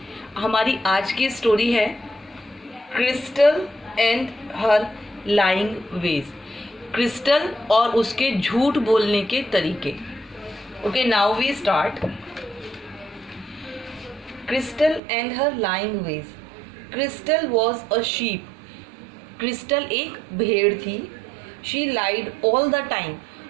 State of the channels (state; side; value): drops out; left; at 15.0 s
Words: हमारी आज की स्टोरी है Crystal and her lying ways. Crystal और उसके झूठ बोलने के तरीके। Okay, now we start. Crystal and her lying ways. Crystal was a sheep. Crystal एक भेड़ थी। She lied all the time.